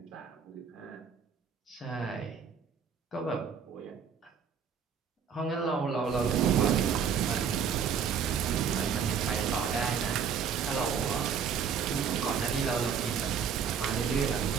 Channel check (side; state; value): left; quieter; 6.9 dB